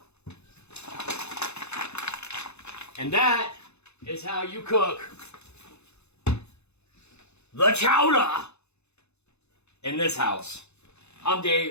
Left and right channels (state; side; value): late; right; 0.81 ms